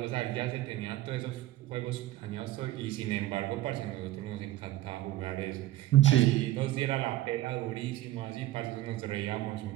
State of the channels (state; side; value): quieter; left; 15.6 dB